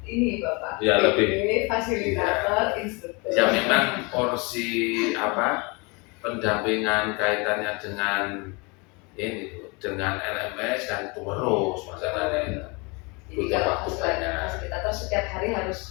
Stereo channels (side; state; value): right; quieter; 29.2 dB